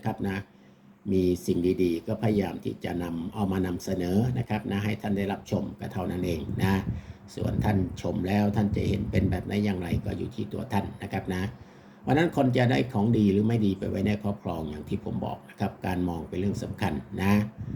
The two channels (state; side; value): identical; both; correlation 1.00